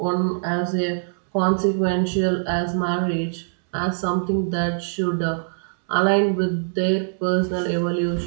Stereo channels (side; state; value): left; silent; digital silence